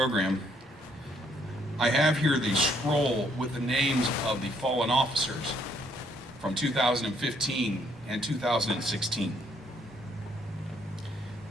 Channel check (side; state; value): both; normal; correlation 0.68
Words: I have here the scroll with the names of the fallen officers from 2015 and 2016.